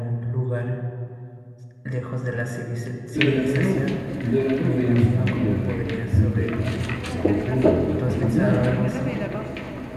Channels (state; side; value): identical; both; correlation 1.00